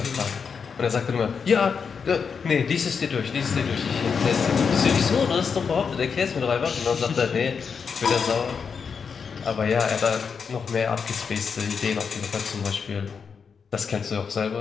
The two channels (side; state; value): right; quieter; 6.0 dB